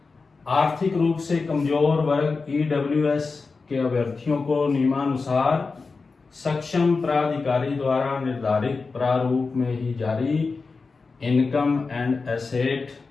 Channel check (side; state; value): right; quieter; 4.3 dB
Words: आर्थिक रूप से कमजोर वर्ग ईडब्ल्यूएस के अभ्यर्थियों को नियमानुसार सक्षम प्राधिकारी द्वारा निर्धारित प्रारूप में ही जारी इनकम एंड एसेट